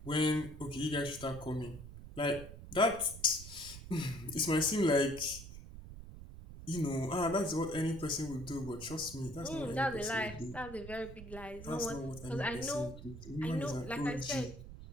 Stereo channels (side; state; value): right; noise; rumble, 13 dB below the sound